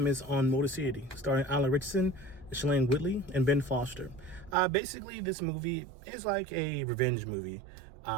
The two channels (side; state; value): left; drops out; at 4.5 s